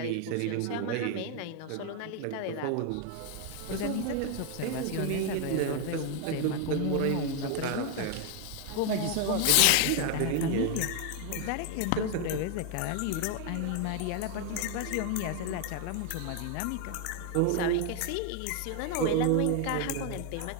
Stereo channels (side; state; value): both; different; correlation 0.01